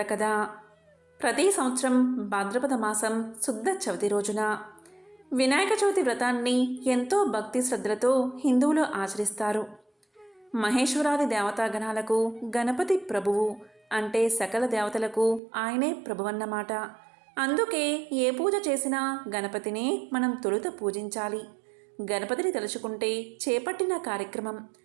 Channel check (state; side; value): drops out; left; at 15.4 s